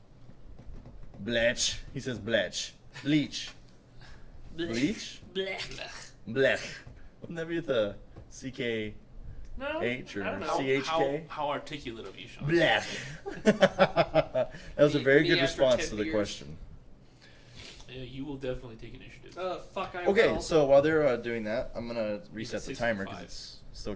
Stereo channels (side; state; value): both; identical; correlation 1.00